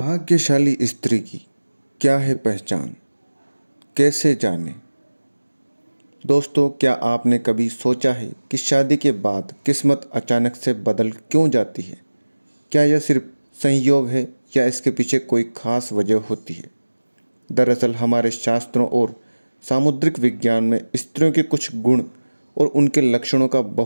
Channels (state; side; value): inverted; both; correlation -1.00